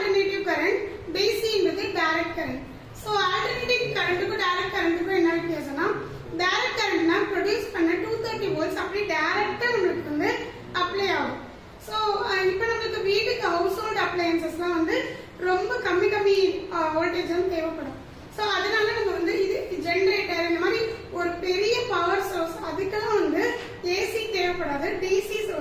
கரண்ட், DC ன்றது டைரக்ட் கரண்ட். சோ ஆல்டர்னேட்டிவ் கரண்ட்க்கும் டைரக்ட் கரண்ட்க்கும் என்ன வித்தியாசம்னா டைரக்ட் கரண்ட்னா ப்ரொடியூஸ் பண்ண 230 வோல்ட்ஸ் அப்படியே டைரக்ட்டா நமக்கு வந்து அப்ளை ஆகும். சோ இப்போ நமக்கு வீட்டுக்கு ஹவுஸ் ஹோல்ட் அப்ளையன்சஸ்லாம் வந்து ரொம்ப கம்மி வோல்டேஜ் வந்து தேவைப்படும். சோ அதனால நம்ம வந்து இது ஜெனரேட்டர் இந்த மாதிரி ஒரு பெரிய பவர் சோர்ஸ் அதுக்கெல்லாம் வந்து ஏசி தேவைப்படாது, டிசி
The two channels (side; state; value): both; identical; correlation 1.00